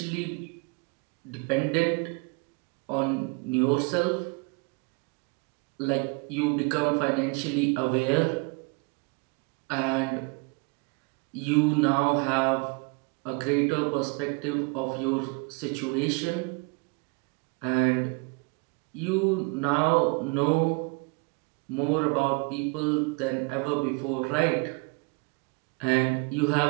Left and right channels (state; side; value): quieter; left; 30.5 dB